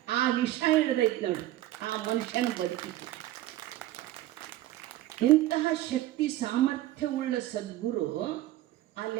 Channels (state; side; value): quieter; left; 15.2 dB